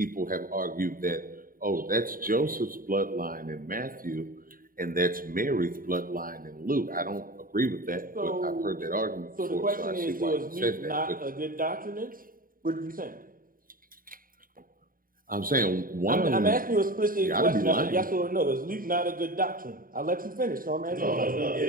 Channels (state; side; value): late; left; 0.41 ms